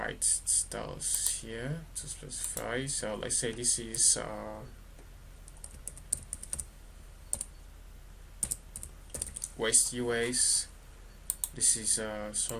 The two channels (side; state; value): both; identical; correlation 1.00